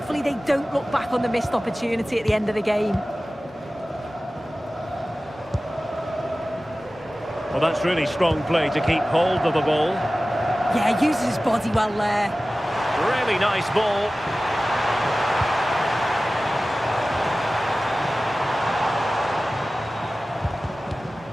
they don't look back on the missed opportunity at the end of the game. Well, that's really strong play to keep hold of the ball. Yeah, uses his body well there. Really nice ball.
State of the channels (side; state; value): both; normal; correlation 0.96